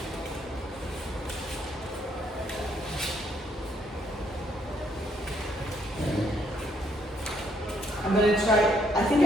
I'm gonna try. I think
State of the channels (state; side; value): normal; both; correlation 0.71